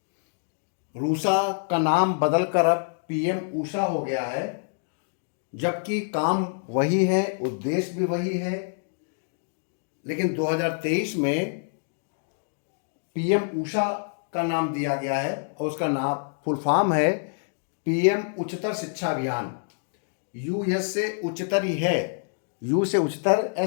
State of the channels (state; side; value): silent; right; digital silence